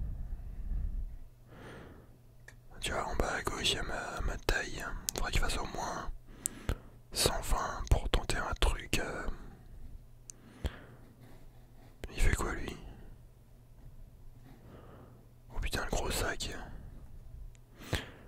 Tu vois, en bas à gauche, il y a ma taille. Faudrait qu'il fasse au moins 120 pour tenter un truc. Il fait quoi, lui? Oh putain, le gros sac.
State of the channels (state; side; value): identical; both; correlation 1.00